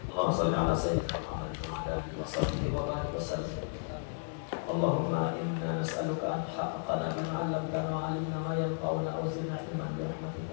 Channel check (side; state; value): right; silent; digital silence